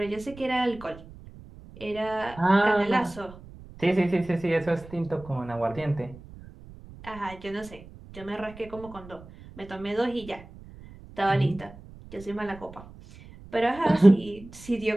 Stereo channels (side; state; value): right; noise; rumble, 18 dB below the sound